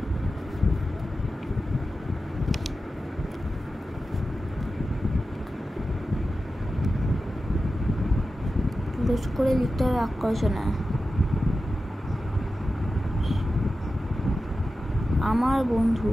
পুরুষ করে লিখতে হবে বাক্য রচনা। আমার বন্ধু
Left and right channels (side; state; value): both; normal; correlation 0.92